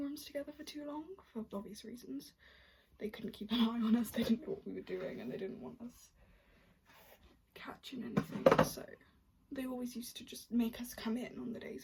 rooms together for too long, for obvious reasons. They couldn't keep an eye on us, they didn't know what we were doing, and they didn't want us catching anything, so they always used to just make us come in on the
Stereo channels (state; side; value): identical; both; correlation 1.00